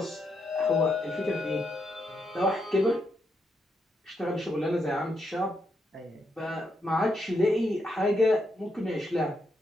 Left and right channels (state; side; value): normal; both; correlation 0.80